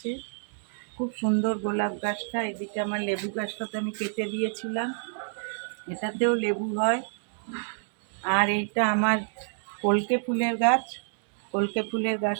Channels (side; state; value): left; silent; digital silence